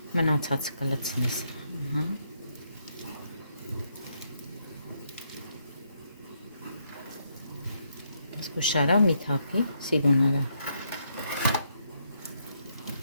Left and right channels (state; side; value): inverted; both; correlation -0.76